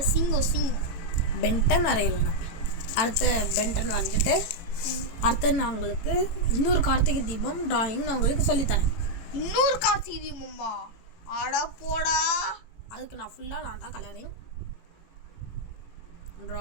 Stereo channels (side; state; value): right; late; 18 ms